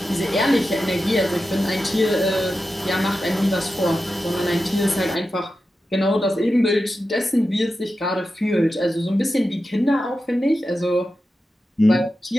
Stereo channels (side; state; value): both; normal; correlation 0.91